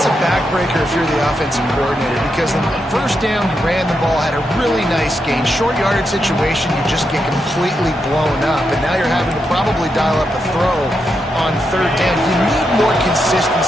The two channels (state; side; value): normal; both; correlation 0.84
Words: a backbreaker if you're the offensive coordinator, because on the first down, you ran the ball, had a really nice gain. Short yardage situation, you just get completely blown up, and now you're having to probably dial up a throw on third down. You need more